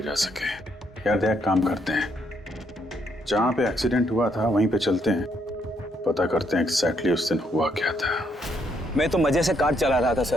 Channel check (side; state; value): both; normal; correlation 0.73